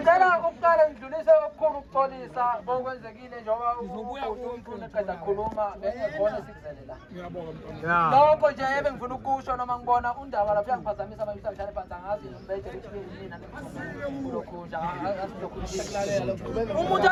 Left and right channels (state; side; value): identical; both; correlation 1.00